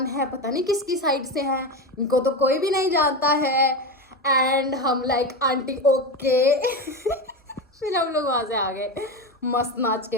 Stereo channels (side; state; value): both; normal; correlation 0.18